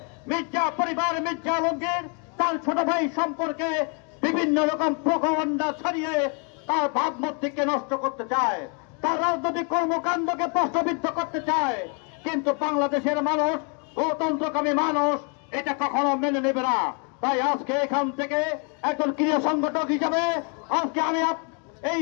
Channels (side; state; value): right; quieter; 37.9 dB